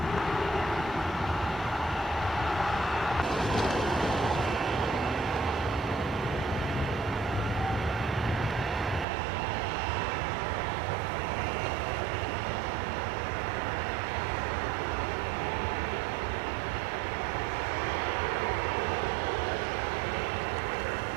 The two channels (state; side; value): drops out; left; at 9.1 s